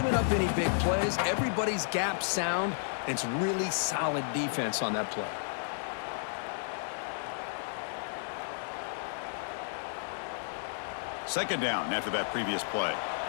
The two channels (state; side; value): silent; right; 56 dB below the other